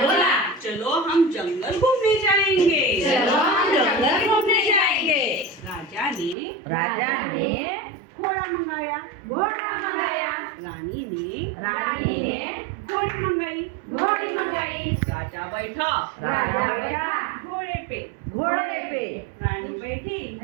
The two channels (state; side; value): drops out; left; at 6.4 s